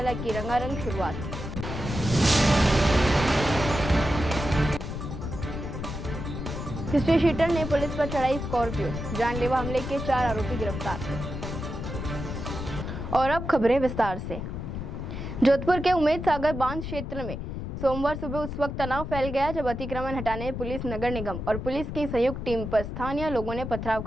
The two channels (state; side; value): noise; left; rumble, 6 dB below the sound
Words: की रंगारंग शुरुआत। हिस्ट्री शीटर ने पुलिस पर चढ़ाई स्कॉर्पियो, जानलेवा हमले के 4 आरोपी गिरफ्तार। और अब खबरें विस्तार से। जोधपुर के उम्मेद सागर बांध क्षेत्र में सोमवार सुबह उस वक्त तनाव फैल गया जब अतिक्रमण हटाने पुलिस, नगर निगम और पुलिस की संयुक्त टीम पर स्थानीय लोगों ने पथराव